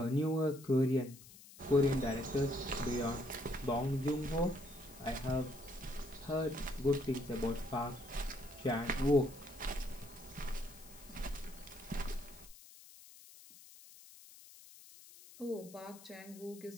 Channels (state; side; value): noise; left; hiss, 19 dB below the sound